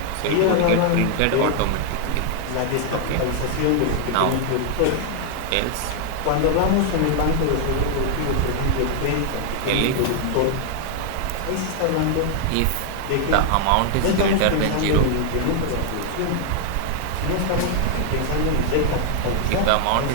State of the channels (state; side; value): different; both; correlation 0.00